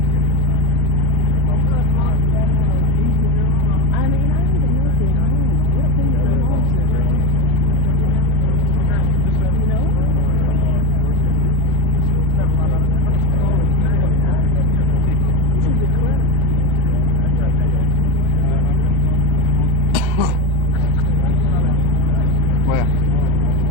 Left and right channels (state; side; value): late; left; 1.3 ms